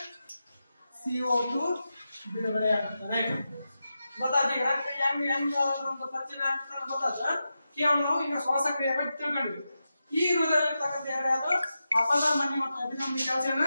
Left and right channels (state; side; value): inverted; both; correlation -0.90